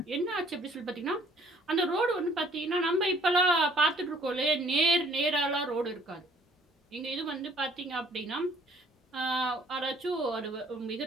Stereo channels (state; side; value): normal; both; correlation 0.58